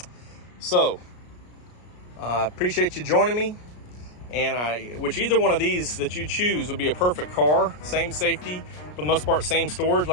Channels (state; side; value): late; right; 33 ms